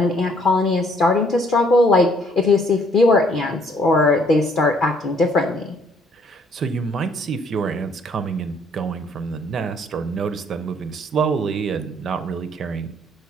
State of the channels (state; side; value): normal; both; correlation 0.64